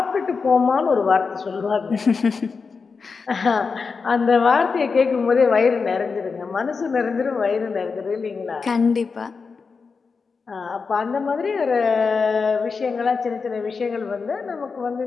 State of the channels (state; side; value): quieter; right; 5.0 dB